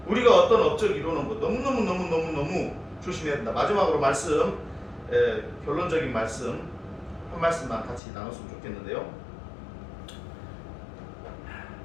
우리가 어떤 업적 이루는 거 너무 조심해야 된다. 마지막으로 말씀, 결론적인 말씀 한 말씀만 같이 나눴으면 좋겠는데요.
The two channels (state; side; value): drops out; right; at 8.0 s